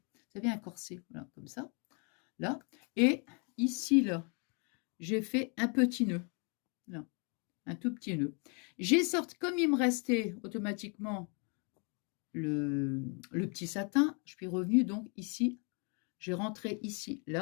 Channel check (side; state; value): right; quieter; 36.3 dB